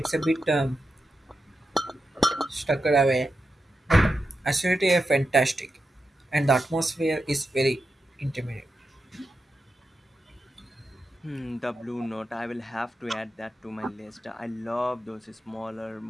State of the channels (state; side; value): normal; both; correlation 0.89